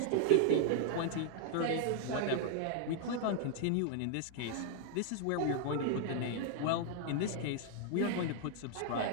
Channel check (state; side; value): different; both; correlation 0.00